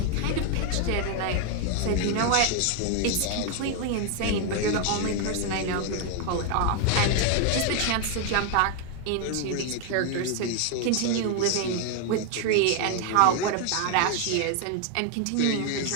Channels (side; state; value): both; different; correlation 0.01